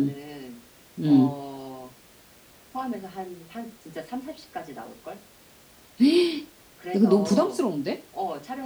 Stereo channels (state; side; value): identical; both; correlation 1.00